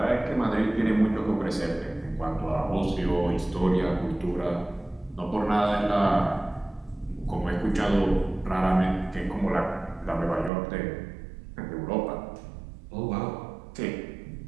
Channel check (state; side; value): drops out; left; at 10.5 s